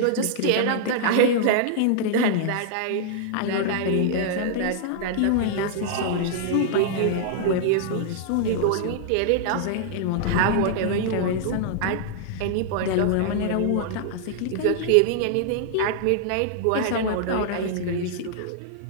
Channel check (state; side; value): different; both; correlation -0.01